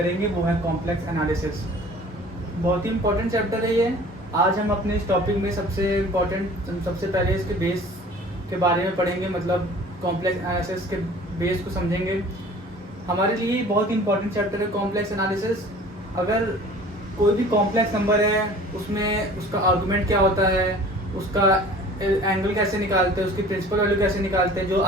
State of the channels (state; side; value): normal; both; correlation 0.46